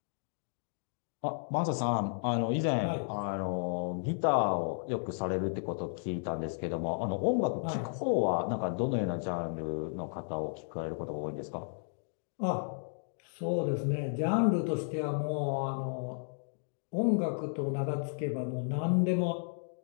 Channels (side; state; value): right; silent; digital silence